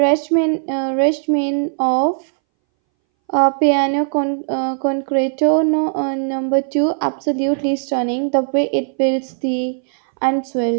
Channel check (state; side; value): silent; left; 64 dB below the other